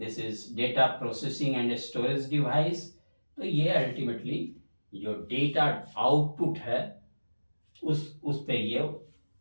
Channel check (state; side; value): inverted; both; correlation -1.00